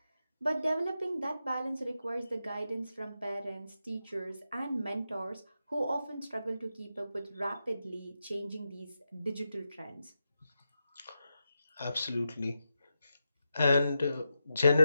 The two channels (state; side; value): inverted; both; correlation -0.88